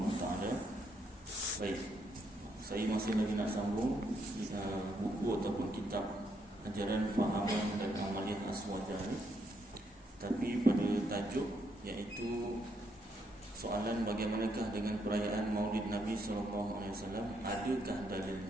Wa Taala. Baik, saya masih lagi nak sambung buku ataupun kitab Ajaran Fahaman dan Amaliyah Aswaja ni. Tapi pada tajuk iaitu soalan bagaimanakah dengan perayaan Maulid Nabi sallallahu alaihi wasallam, adakah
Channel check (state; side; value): normal; both; correlation 0.76